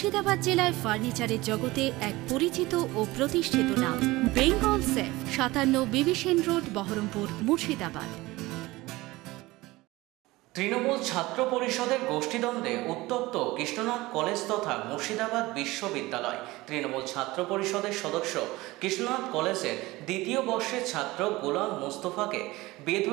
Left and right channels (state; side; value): quieter; left; 19.9 dB